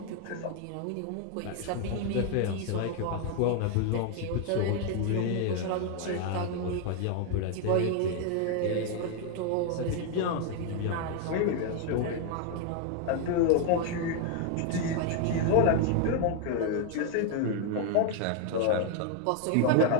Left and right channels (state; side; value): different; both; correlation 0.00